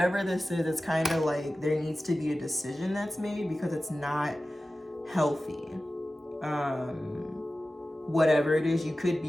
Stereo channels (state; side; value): normal; both; correlation 0.95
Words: this is, it's kind of like there needs to be a decision that's made because it's not healthy. Whatever it is, you could